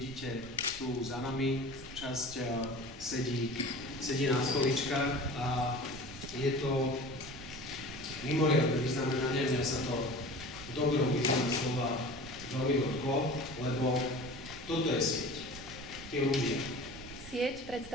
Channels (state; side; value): noise; right; rumble, 16 dB below the sound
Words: tu za nami, časť sedí na stoličkách a je to mimoriadne vyznamenanie. Mňa sa to v dobrom význame slova veľmi dotklo, lebo toto je sieť, tí ľudia. Sieť